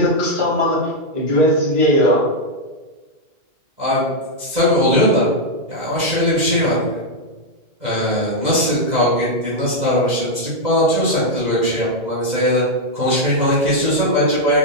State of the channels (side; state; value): left; late; 2.0 ms